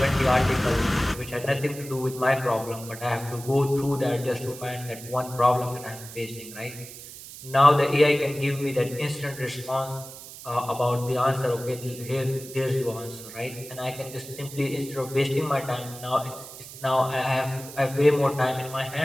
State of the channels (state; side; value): noise; right; hiss, 14 dB below the sound